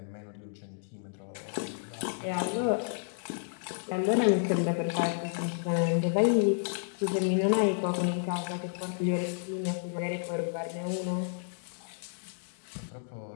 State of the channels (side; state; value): right; silent; digital silence